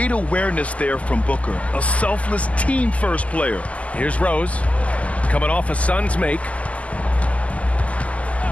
awareness there from Booker. A selfless team-first player. Here's Rose, coming off a Suns make.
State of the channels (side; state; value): right; late; 0.068 ms